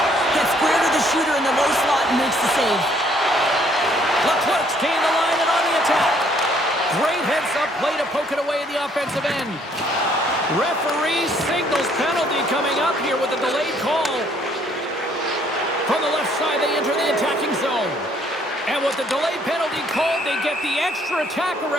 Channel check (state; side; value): normal; both; correlation 0.64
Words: Gets square to the shooter in the low slot and makes the save. Leclerc's gained the line and on the attack. Great heads-up play to poke it away in the offensive end. Referee signals penalty coming up here with a delayed call. From the left side, they enter the attacking zone. And with the delayed penalty called, they get the extra attacker